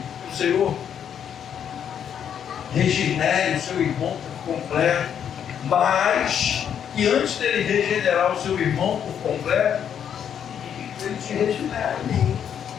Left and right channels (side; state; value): right; quieter; 8.6 dB